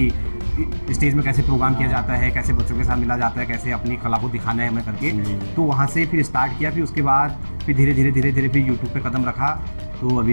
स्टेज में कैसे प्रोग्राम किया जाता है, कैसे बच्चों के साथ मिला जाता है, कैसे अपनी कला को दिखाना है हमें करके। तो वहाँ से फिर स्टार्ट किया। फिर उसके बाद फिर धीरे धीरे फिर यूट्यूब पे कदम रखा। तो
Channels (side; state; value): both; inverted; correlation -1.00